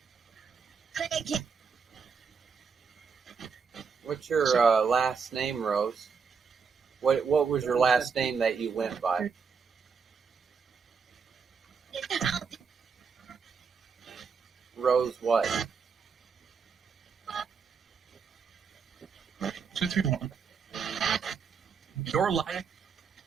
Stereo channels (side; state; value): left; quieter; 5.8 dB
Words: What's your last name, Rose? What was your last name that you went by? Rose what? 231. Your life.